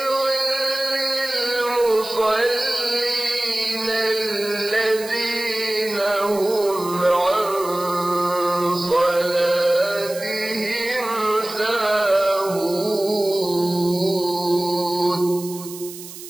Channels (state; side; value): noise; right; hiss, 14 dB below the sound